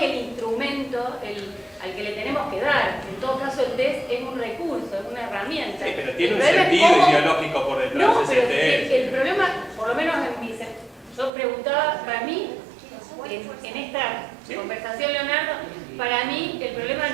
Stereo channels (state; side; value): drops out; left; at 11.3 s